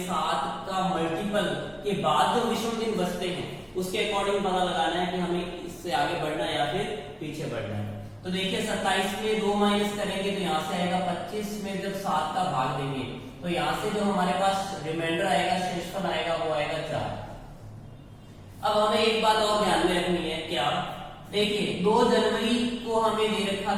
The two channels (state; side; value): identical; both; correlation 1.00